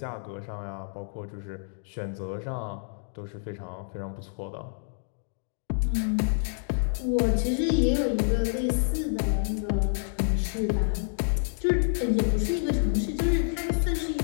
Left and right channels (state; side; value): silent; right; digital silence